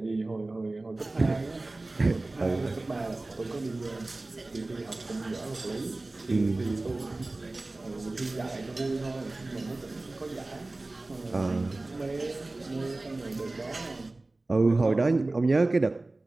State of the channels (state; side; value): quieter; left; 3.0 dB